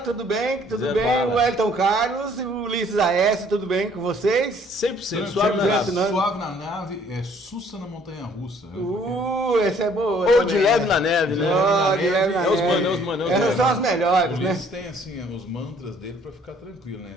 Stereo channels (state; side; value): normal; both; correlation 0.59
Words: bem? Tudo Zé bem? Bala. O Elton Carlos e o Ulisses Aécio, tudo bem com vocês? 100% suave na nave. Suave na nave, Sussa na montanha russa. Esse é boa. Ou também, de leve na neve, né? De leve na É os neve. manos, os manos. Essas são as O melhores, né? Ulisses tem assim os mantras dele pra ficar tranquilo, né?